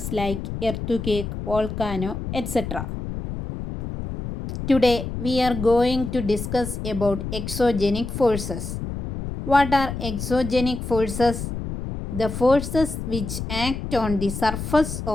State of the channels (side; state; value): left; noise; rumble, 6 dB below the sound